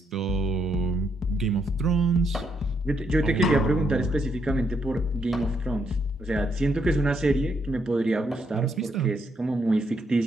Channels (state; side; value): normal; both; correlation 0.76